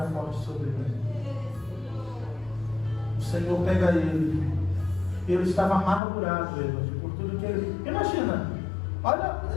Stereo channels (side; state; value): right; drops out; at 6.0 s